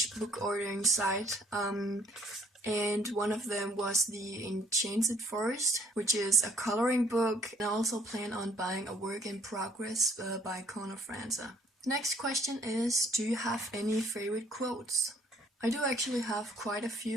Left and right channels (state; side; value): normal; both; correlation 0.62